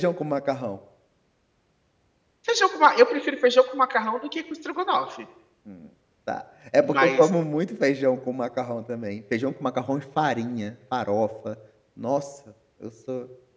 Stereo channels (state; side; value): identical; both; correlation 1.00